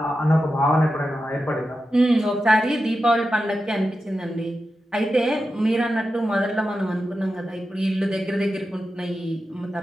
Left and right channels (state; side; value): normal; both; correlation 0.91